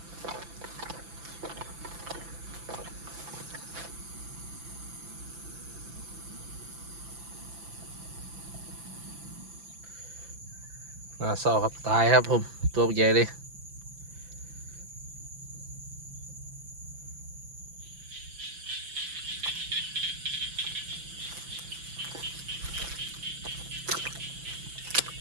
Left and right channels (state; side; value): late; left; 5.9 ms